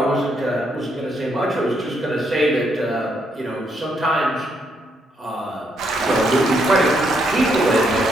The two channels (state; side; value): normal; both; correlation 0.75